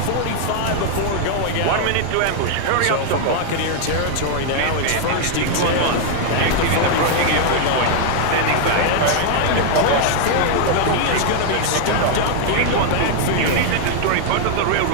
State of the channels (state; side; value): different; both; correlation 0.00